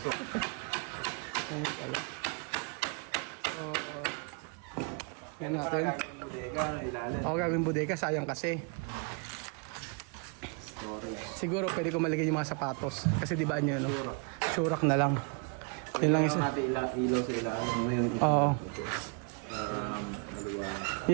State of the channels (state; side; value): quieter; left; 36.3 dB